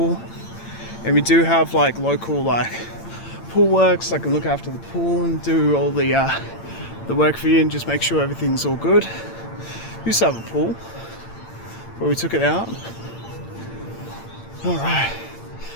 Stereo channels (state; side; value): late; right; 8.8 ms